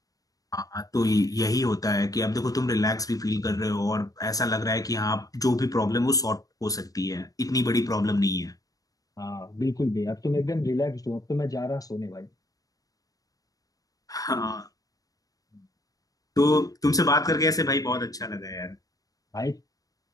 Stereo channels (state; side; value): late; right; 0.18 ms